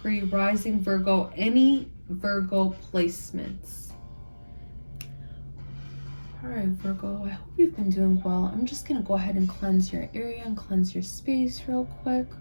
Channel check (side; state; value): both; inverted; correlation -1.00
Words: Rising Virgo, any Virgo placements. Alright, Virgo, I hope you've been doing well. I'm just going to go ahead and cleanse your area and cleanse your space real quick.